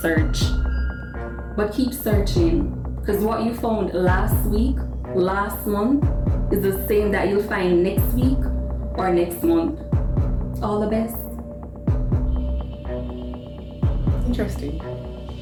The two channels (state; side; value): identical; both; correlation 1.00